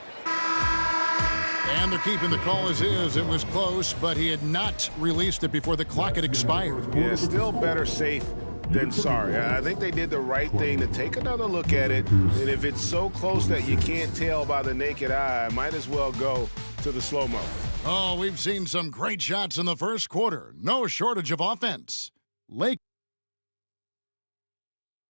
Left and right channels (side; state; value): both; inverted; correlation -1.00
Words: and they're keeping the call as is. It was close, but he had not released it before the clock had expired. Yeah, still better safe than sorry. I think they did the right thing to take another look at it. And if it's so close that you can't tell by the naked eye, might as well go to the slow-mo. Oh, we've seen some great shots in the first quarter. No shortage of offense. Lake.